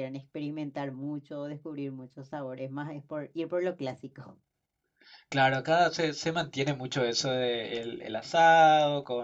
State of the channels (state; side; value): identical; both; correlation 1.00